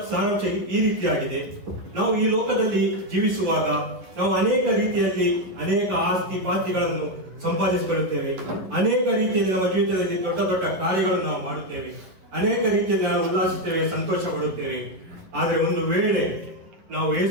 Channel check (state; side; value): late; left; 11 ms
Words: ಸಾರಾಂಶ ಈ ರೀತಿಯಾಗಿದೆ. ನಾವು ಈ ಲೋಕದಲ್ಲಿ ಜೀವಿಸುವಾಗ ನಾವು ಅನೇಕ ರೀತಿಯಲ್ಲಿ ಅನೇಕ ಆಸ್ತಿ ಪಾಸ್ತಿಗಳನ್ನು ಸಂಪಾದಿಸಿಕೊಳ್ಳುತ್ತೇವೆ. ಅನೇಕ ರೀತಿಯಲ್ಲಿ ನಮ್ಮ ಜೀವಿತದಲ್ಲಿ ದೊಡ್ಡ ದೊಡ್ಡ ಕಾರ್ಯಗಳನ್ನು ನಾವು ಮಾಡುತ್ತೇವೆ. ಅನೇಕ ರೀತಿಯಲ್ಲಿ ನಾವು ಉಲ್ಲಾಸಿಸುತ್ತೇವೆ, ಸಂತೋಷ ಪಡುತ್ತೇವೆ. ಆದರೆ ಒಂದು ವೇಳೆ ನಾವು